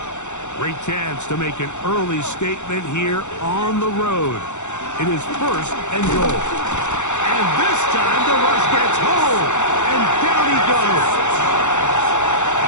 Great chance to make an early statement here on the road. It is 1st and goal. And this time the rush gets home, and down he goes.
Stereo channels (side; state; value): right; late; 0.84 ms